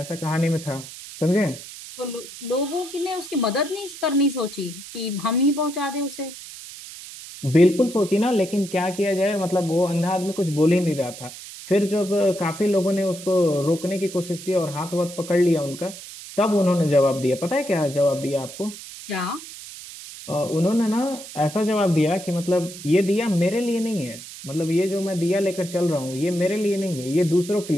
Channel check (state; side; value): noise; right; hiss, 14 dB below the sound